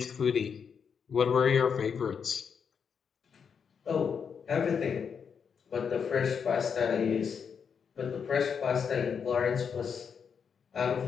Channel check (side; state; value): right; quieter; 6.7 dB